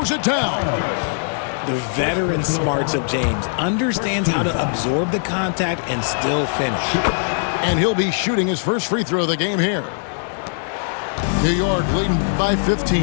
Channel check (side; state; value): right; silent; digital silence